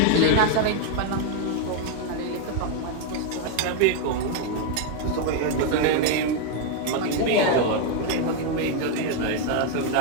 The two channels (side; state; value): both; different; correlation 0.01